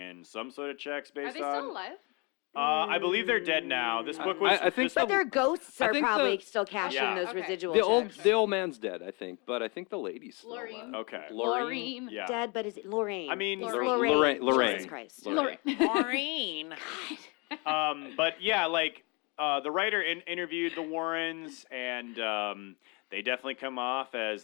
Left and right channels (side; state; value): right; quieter; 30.6 dB